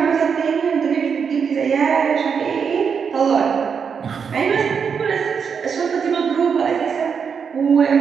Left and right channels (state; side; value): quieter; left; 6.5 dB